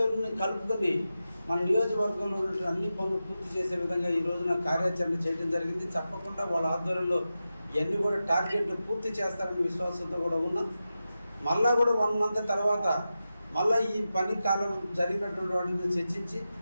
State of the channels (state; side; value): inverted; both; correlation -0.92